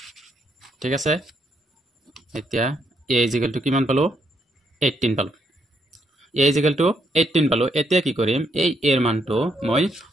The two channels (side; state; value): both; normal; correlation 0.75